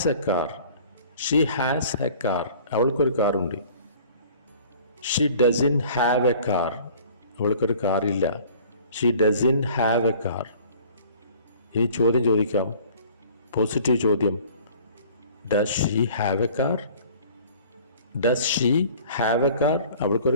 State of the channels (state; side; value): inverted; both; correlation -0.49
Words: a car. She has a car, അവൾക്കൊരു കാറുണ്ട്. She doesn't have a car, അവൾക്കൊരു കാറില്ല. She doesn't have a car. ഇനി ചോദ്യം ചോദിക്കാം, പോസിറ്റീവ് ചോദ്യം. Does she have a car? Does she have a car?